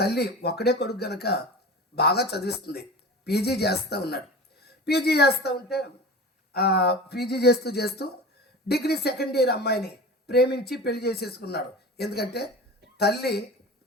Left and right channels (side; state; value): both; normal; correlation 0.34